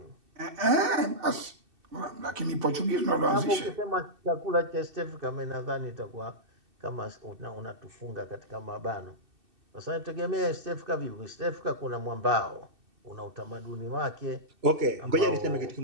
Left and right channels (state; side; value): late; left; 2.6 ms